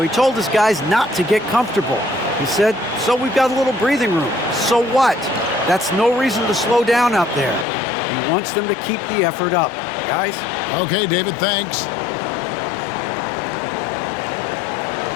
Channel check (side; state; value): right; drops out; at 7.7 s